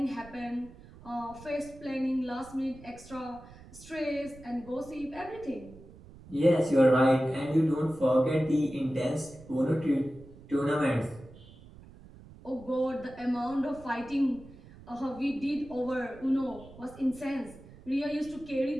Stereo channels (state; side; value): noise; right; rumble, 20 dB below the sound